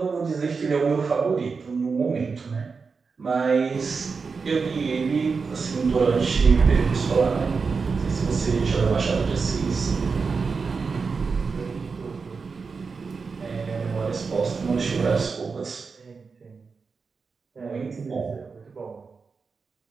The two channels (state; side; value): quieter; left; 4.9 dB